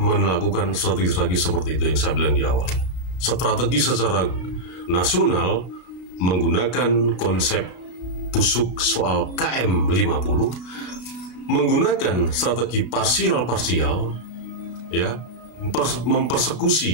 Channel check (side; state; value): right; late; 32 ms